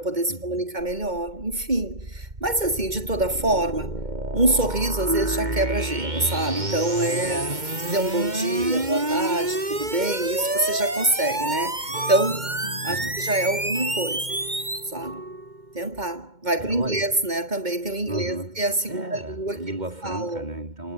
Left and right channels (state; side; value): late; left; 2.1 ms